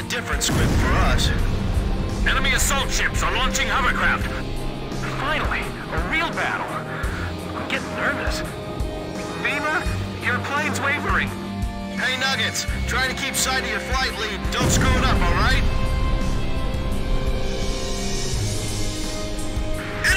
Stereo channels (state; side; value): identical; both; correlation 1.00